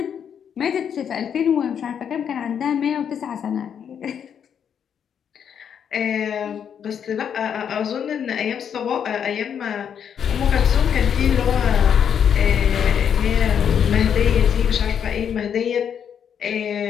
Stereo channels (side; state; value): right; quieter; 8.1 dB